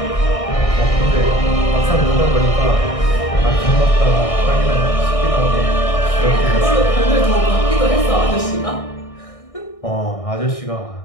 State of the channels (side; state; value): right; late; 1.6 ms